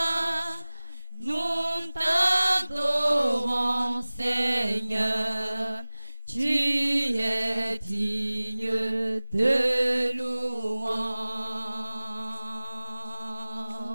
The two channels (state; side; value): inverted; both; correlation -0.99